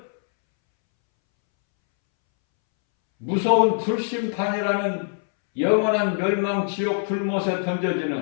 무서운 불심판이라는 영원한 멸망 지옥 불못에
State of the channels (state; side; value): silent; right; 63 dB below the other